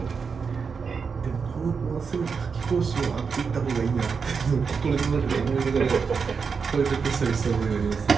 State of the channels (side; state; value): left; quieter; 5.6 dB